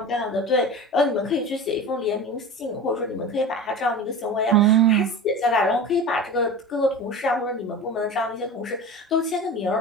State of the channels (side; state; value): both; normal; correlation 0.32